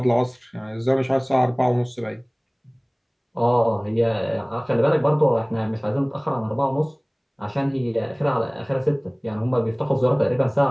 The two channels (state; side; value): identical; both; correlation 1.00